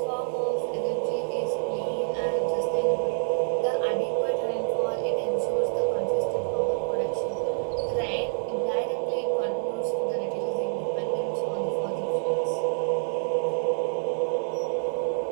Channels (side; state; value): left; silent; 60 dB below the other